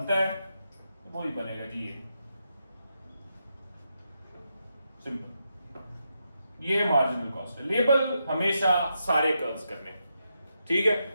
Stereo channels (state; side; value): inverted; both; correlation -0.84